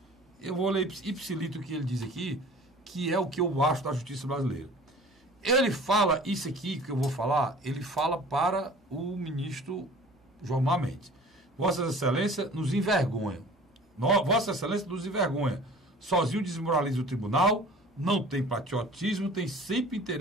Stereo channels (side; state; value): both; normal; correlation 0.45